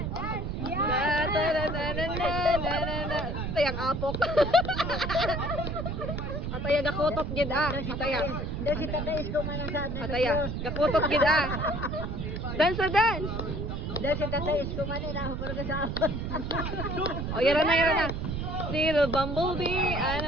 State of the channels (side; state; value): right; noise; rumble, 3 dB below the sound